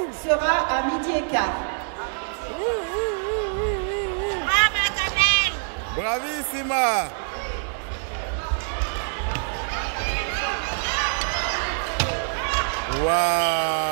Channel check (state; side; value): silent; left; 62 dB below the other